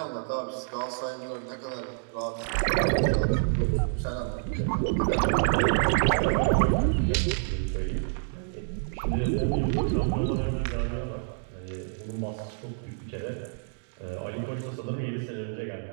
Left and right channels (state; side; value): silent; left; digital silence